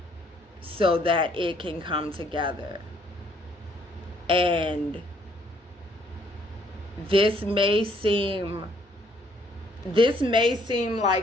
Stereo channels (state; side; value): normal; both; correlation 0.66